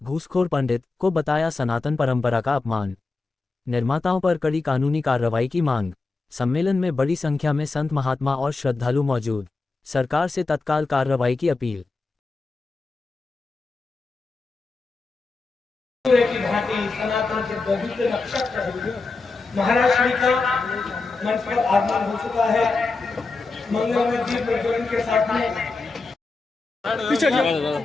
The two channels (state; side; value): quieter; right; 3.8 dB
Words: घूसखोर पंडित को बताया सनातन परंपरा का अपमान। निर्माताओं पर कड़ी कानूनी कार्रवाई की मांग। सम्मेलन में बड़ी संख्या में संत महात्मा और श्रद्धालु मौजूद। सरकार से तत्काल कार्रवाई की अपील। सनातन के पवित्र नक्षत्र महाराज श्री का मंच पर आगमन हो चुका है। मंगलमय दीप प्रज्वलन के साथ में पीछे